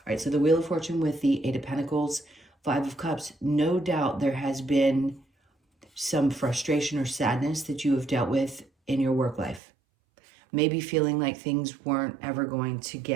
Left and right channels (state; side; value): drops out; left; at 9.6 s